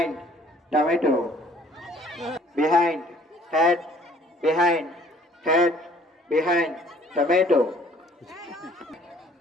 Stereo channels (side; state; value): both; normal; correlation 0.57